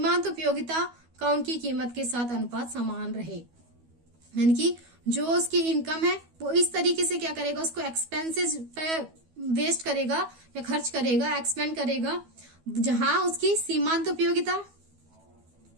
उपयोगिता का उनकी कीमत के साथ अनुपात समान रहे। यानी कि जो उसकी इनकम है वो इस तरीके से क्या करेगा, उसको एक्सपेंसेस पे वेस्ट करेगा या खर्च करेगा, एक्सपेंड करेगा, जहां उसकी सीमांत उपयोगिता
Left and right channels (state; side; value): late; left; 12 ms